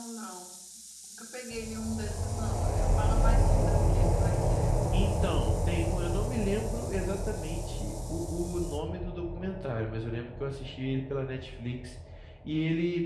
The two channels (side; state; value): both; identical; correlation 1.00